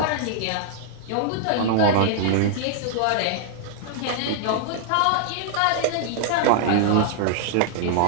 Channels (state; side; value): different; both; correlation -0.01